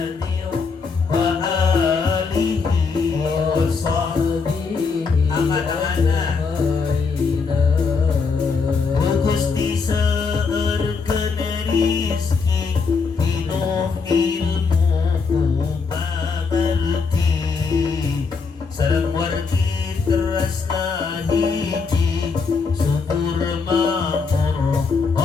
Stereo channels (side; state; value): right; quieter; 4.8 dB